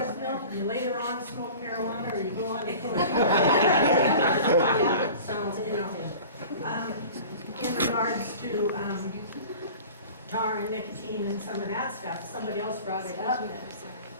milk, and you later on smoke marijuana, or you go on to cocaine. So, you know, in regards to tar and nicotine and some of that stuff, somebody else brought it up.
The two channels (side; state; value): both; inverted; correlation -0.40